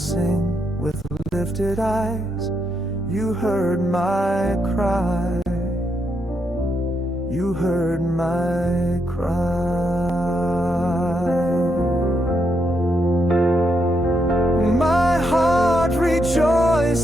with lifted eyes. You heard my cry. You heard my cry. My heart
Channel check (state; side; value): normal; both; correlation 0.80